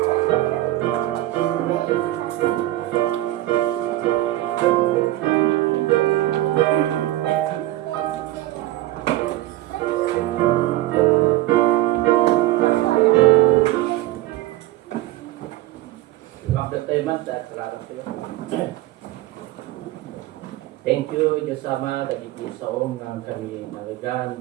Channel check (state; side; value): quieter; left; 16.1 dB